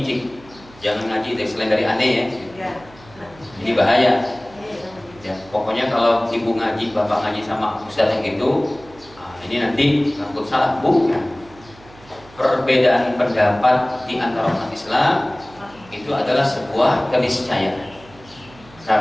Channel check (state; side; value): noise; right; hum, 23 dB below the sound